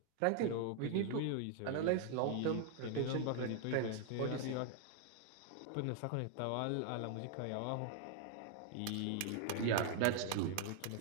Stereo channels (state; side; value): different; both; correlation 0.00